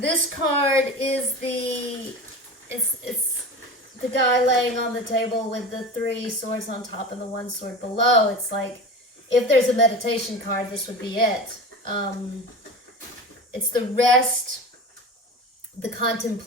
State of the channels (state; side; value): normal; both; correlation 0.30